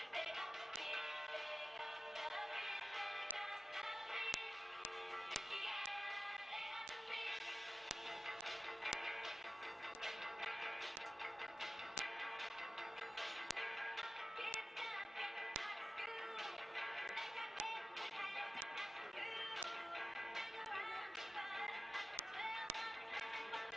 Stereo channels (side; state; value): both; normal; correlation 0.94